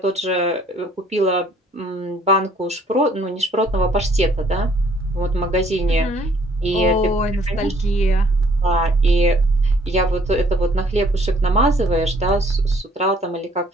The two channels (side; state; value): both; normal; correlation 0.61